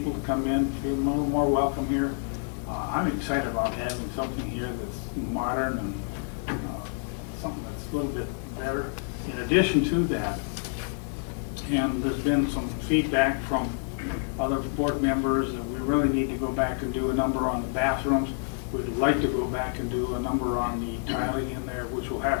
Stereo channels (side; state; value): right; silent; 59 dB below the other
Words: to come in, feel more welcome here. I'm excited about having something here that's modern and something that's a little bit better. In addition to that, and there's been some feedback from other board members that we really need to go back and do a number on the bathrooms. We'd like to go back and do a number on the tiling in there, which will